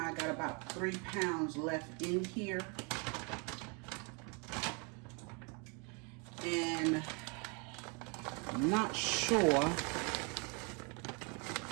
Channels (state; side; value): quieter; left; 33.4 dB